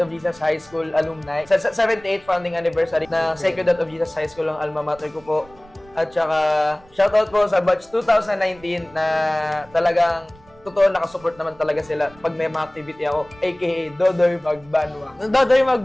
of Jesus High School alumni, sa 78th founding anniversary ng Sacred Heart of Jesus High School ang alma mater ko po. At saka, shoutout po sa batch 2019 na talagang totoo nakasupport naman talaga sila pag may mga activity ako, aka Dodoy Magbanwa. Dodoy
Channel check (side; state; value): right; noise; rumble, 26 dB below the sound